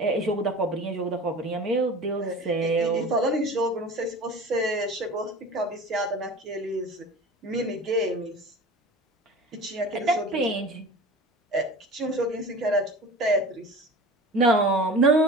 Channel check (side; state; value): both; normal; correlation 0.37